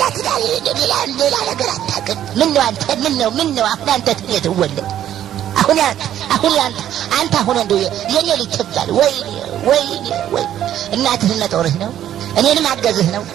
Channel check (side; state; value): left; quieter; 11.2 dB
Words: ሌላ ነገር አታውቅም ምን ነው አሁን አንተ ትወለድ አሁን አንተ አሁን እንደው የኔ ልጅ ትባል ወይ እናትህ መጦርህ ነው እኔንም አገዝህ ነው